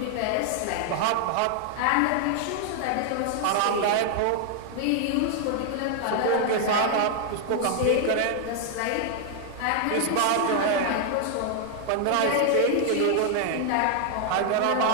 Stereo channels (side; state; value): both; different; correlation 0.00